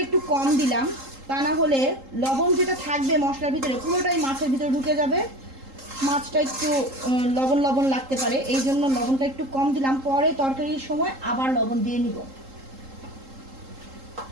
একটু কম দিলাম। তা না হলে লবণ যেটা থাকবে মশলার ভিতরে পুরোটাই মাছের ভিতরে ঢুকে যাবে, মাছটা একটু লবণ লবণ লাগতে পারে। এই জন্য লবণটা একটু কম দিলাম, পরে তরকারির সময় আবার লবণ দিয়ে নিব।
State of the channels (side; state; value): left; late; 3.8 ms